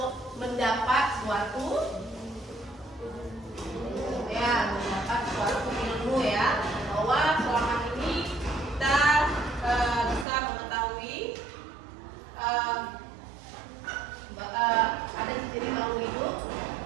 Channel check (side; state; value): left; drops out; at 10.2 s